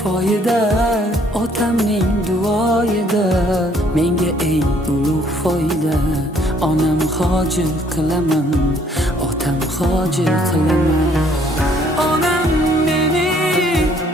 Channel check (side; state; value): both; normal; correlation 0.63